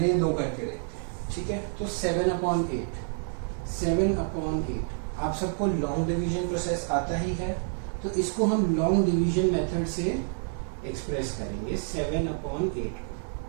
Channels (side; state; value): left; silent; 59 dB below the other